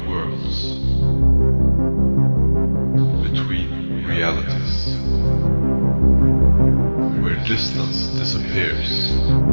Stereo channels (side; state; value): both; inverted; correlation -1.00